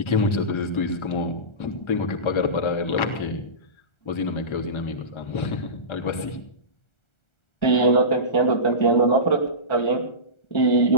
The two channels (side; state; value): right; late; 1.3 ms